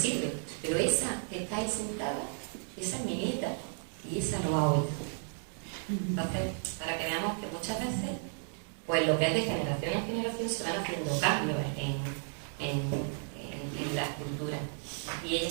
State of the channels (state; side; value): silent; left; 55 dB below the other